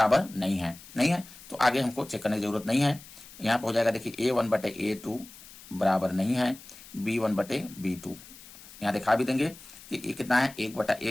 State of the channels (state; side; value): noise; left; hiss, 19 dB below the sound